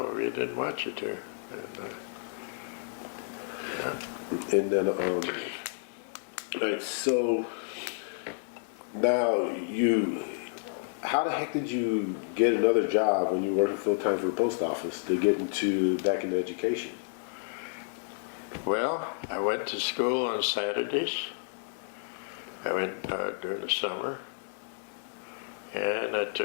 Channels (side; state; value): right; silent; 57 dB below the other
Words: we didn't want you to. And then, all right, so now how the heck did you get another job when you were working full time for the post office to get back into education? Well, I went to school on Saturdays. I went during the summer, and I